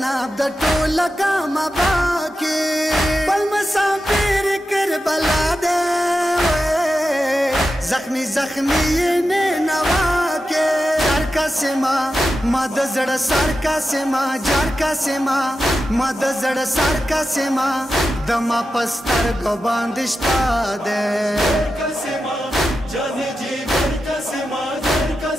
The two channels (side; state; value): both; normal; correlation 0.91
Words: द टोला का बाकी पल मसाफिर कर बला दे जख्मी जख्मी ये ने नवा के जार का सेमा मद जड़ सार का सेमा जार का सेमा मद जड़ सार का सेमा दमा पस्तर को बांधिश्ता दे का सेमा जाने जी घर का सेमा जर का